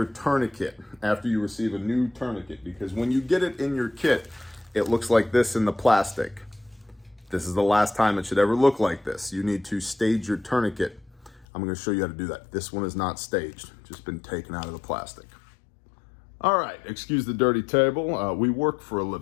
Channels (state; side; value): drops out; right; at 11.5 s